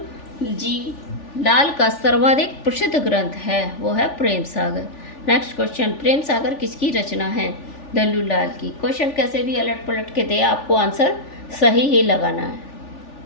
जी लाल का सर्वाधिक प्रसिद्ध ग्रंथ है, वो है प्रेम सागर। नेक्स्ट क्वेश्चन, प्रेम सागर किसकी रचना है? लल्लू लाल की। क्वेश्चन कैसे भी अलट पलट के दे, आपको आंसर सही ही लगाना है।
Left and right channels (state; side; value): late; right; 3.4 ms